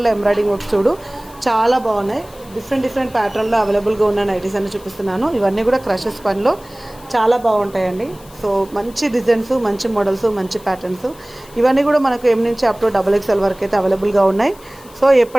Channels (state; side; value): noise; left; hiss, 24 dB below the sound